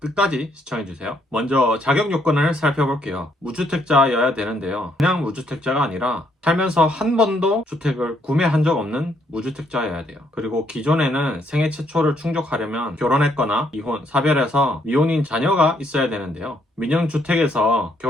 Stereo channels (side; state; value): both; normal; correlation 0.70